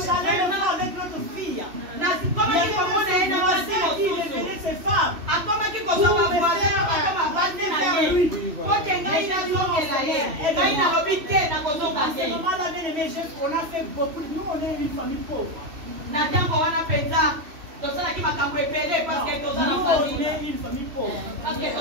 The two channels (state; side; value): late; left; 3.0 ms